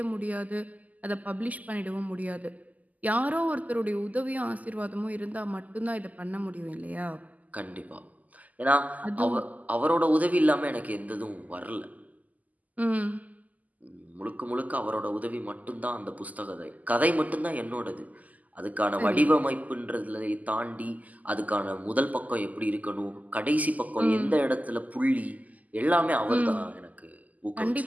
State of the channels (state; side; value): late; left; 0.078 ms